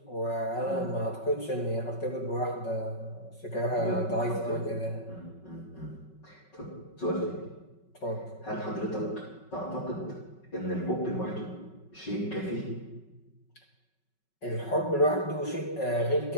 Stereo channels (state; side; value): late; right; 5.3 ms